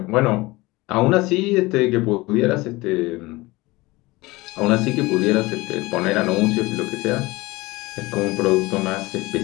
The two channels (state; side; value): quieter; right; 21.4 dB